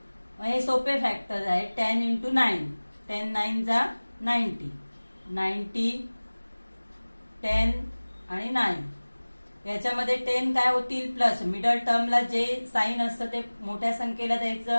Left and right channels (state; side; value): inverted; both; correlation -1.00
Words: हे सोपे फॅक्टर आहे। 10 इंटू 9, 10 9 जा 90, 90 10 आणि 9, याच्यामध्ये 10 काय होतील? प्लस, मिडल टर्मला जे साइन असतं ते मोठ्या संख्येला द्यायचं